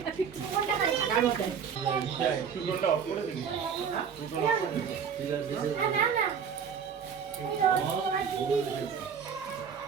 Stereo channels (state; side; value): quieter; left; 7.0 dB